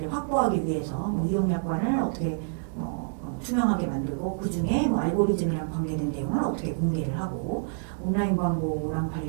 확보하기 위해서 이용약관을 어떻게 투명하게 만들고 그 중에 알고리즘이랑 관계된 내용을 어떻게 공개를 하고 온라인 광고랑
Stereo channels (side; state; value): left; silent; digital silence